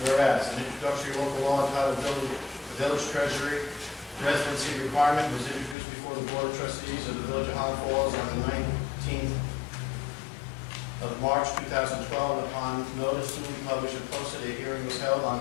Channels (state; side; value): drops out; right; at 5.8 s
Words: Whereas an introductory local law entitled Village Treasury Residency Requirement was introduced before the Board of Trustees of the Village of Highland Falls on the 19th of March 2012. Upon notice to be published and posted, a hearing was held